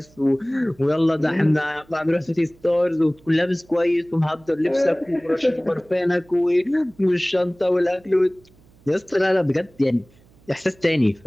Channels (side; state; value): right; noise; hum, 29 dB below the sound